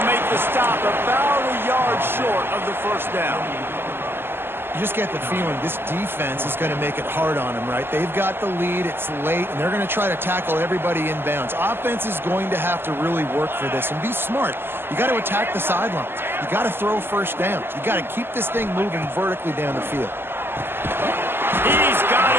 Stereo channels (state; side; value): late; left; 0.11 ms